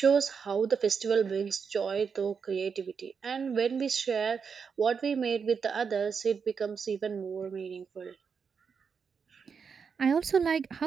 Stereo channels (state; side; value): quieter; left; 6.1 dB